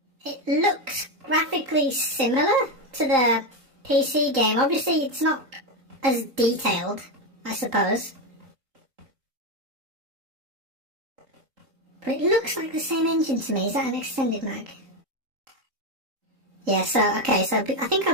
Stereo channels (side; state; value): left; late; 3.8 ms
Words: it looks graphically similar to the PC game. Obviously, it's not as detailed, I suppose. But it looks like the same engine to me. Is that an extended mag? Yeah, so, okay, so I think